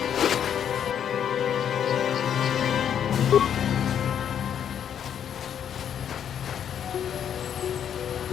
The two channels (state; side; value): quieter; right; 8.9 dB